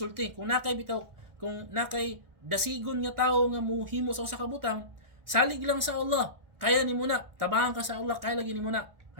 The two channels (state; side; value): late; left; 1.4 ms